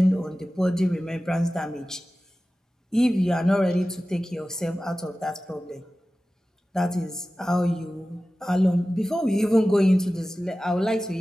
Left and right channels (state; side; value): normal; both; correlation 0.96